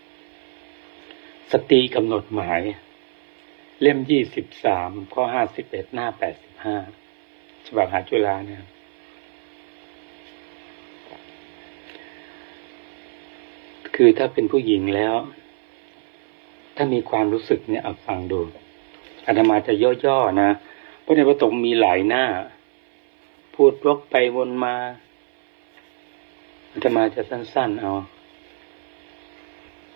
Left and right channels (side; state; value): left; silent; 58 dB below the other